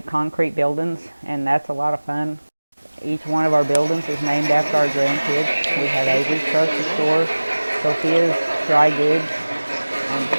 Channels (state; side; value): inverted; both; correlation -1.00